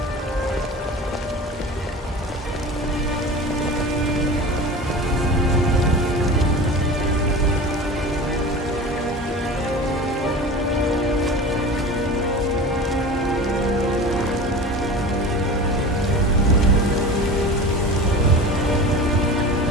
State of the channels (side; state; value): both; normal; correlation 0.34